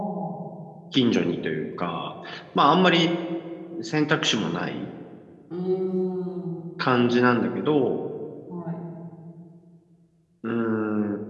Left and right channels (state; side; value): identical; both; correlation 1.00